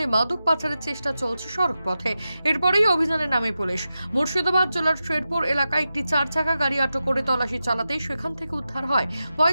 মাদক পাচারের চেষ্টা চলছে সড়ক পথে। এরপরেই অভিযানে নামে পুলিশ। মুর্শিদাবাদ জেলার শেরপুর এলাকায় একটি 4 চাকা গাড়ি আটক করে তল্লাশি চালাতেই সেখান থেকে উদ্ধার হয়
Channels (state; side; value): inverted; both; correlation -0.91